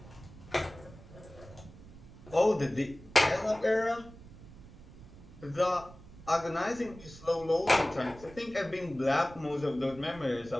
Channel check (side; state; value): right; noise; rumble, 18 dB below the sound